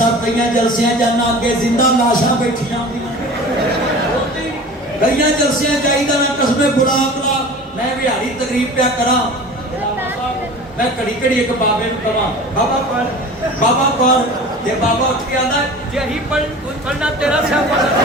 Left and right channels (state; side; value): normal; both; correlation 0.39